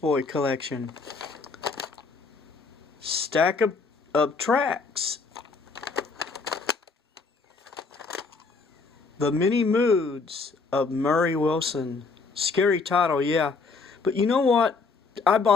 collection. Stack of tracks. The Many Moods of Murray Wilson. Scary title, yeah. But you know what? I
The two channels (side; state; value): right; quieter; 4.4 dB